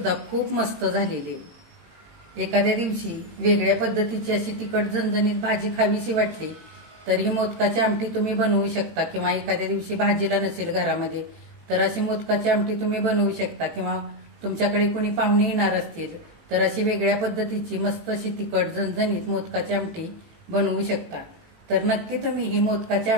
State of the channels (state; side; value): late; left; 18 ms